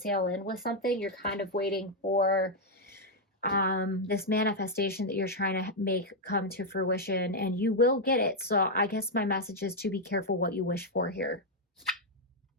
in with something. You're kind of waiting for this manifestation that you're trying to make come to fruition, and you will get it. So I guess my message is to be careful what you wish for here.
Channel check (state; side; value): normal; both; correlation 0.00